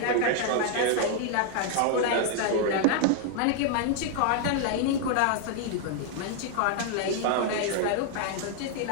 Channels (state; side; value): different; both; correlation 0.00